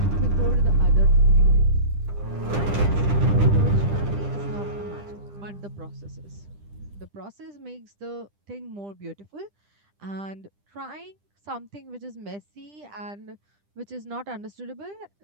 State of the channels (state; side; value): late; left; 10 ms